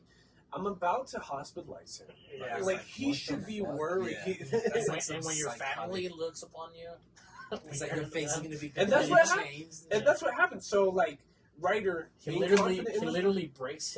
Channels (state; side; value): identical; both; correlation 1.00